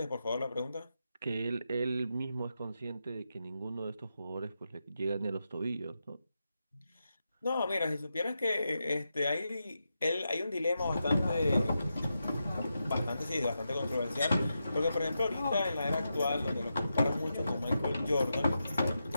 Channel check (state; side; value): inverted; both; correlation -0.87